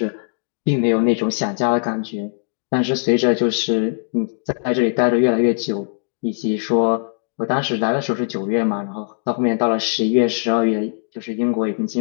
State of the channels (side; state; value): right; silent; digital silence